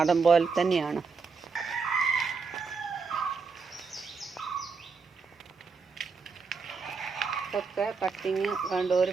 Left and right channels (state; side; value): quieter; left; 4.9 dB